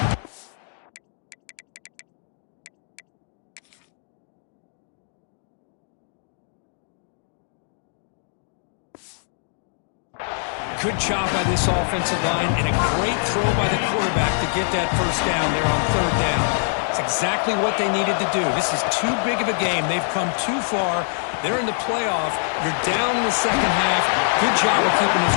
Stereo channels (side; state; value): right; silent; digital silence